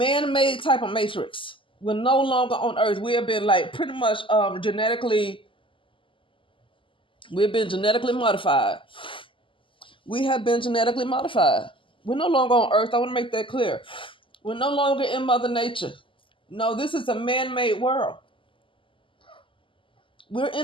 type of matrix. We're no longer on earth. We have been pretty much we've been genetically modified. We have been genetically modified. We're no longer on earth. I want to make that clear. We're no longer in Mother Nature. No, this is a man-made world. We're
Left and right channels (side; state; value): right; late; 0.25 ms